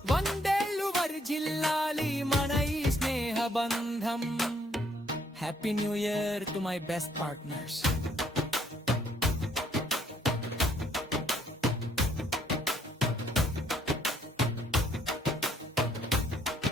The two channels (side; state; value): both; normal; correlation 0.68